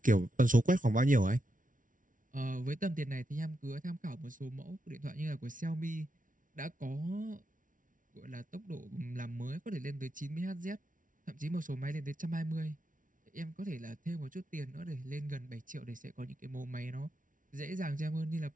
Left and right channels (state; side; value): late; left; 0.38 ms